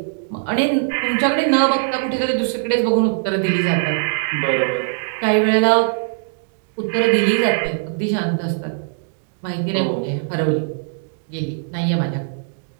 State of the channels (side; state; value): left; silent; digital silence